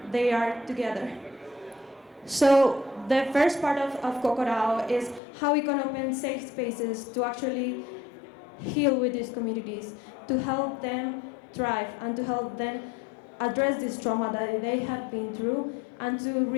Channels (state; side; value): drops out; right; at 5.2 s